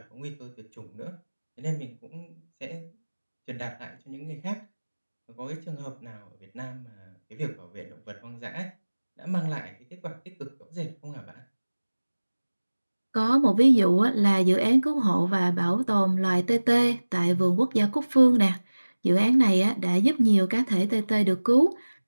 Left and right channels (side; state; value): both; inverted; correlation -1.00